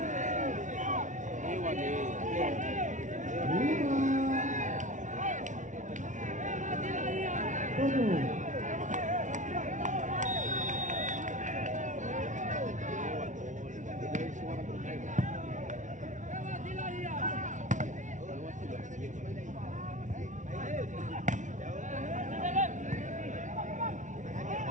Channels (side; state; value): left; late; 0.37 ms